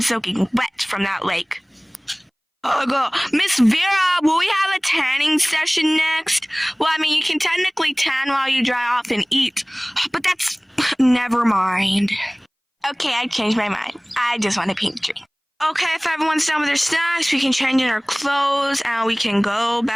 soaking wet from that lake. Miss Vera, will we have a tanning session next? Well, I mean, you can technically tan while you dry off and eat, but that's... Never mind. Okay, I changed my mind. I just want a pink drink. Okay, if everyone's done with their snacks, we can change in our clothes and we can go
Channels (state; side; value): identical; both; correlation 1.00